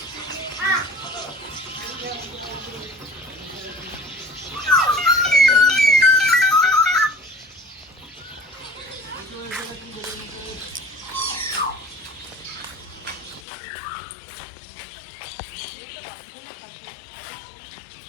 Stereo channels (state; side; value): drops out; right; at 13.4 s